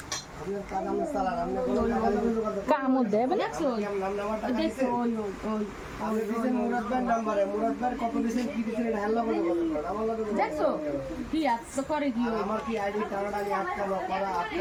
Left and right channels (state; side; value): identical; both; correlation 1.00